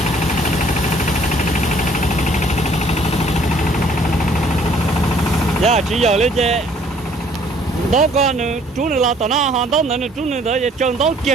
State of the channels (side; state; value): both; normal; correlation 0.60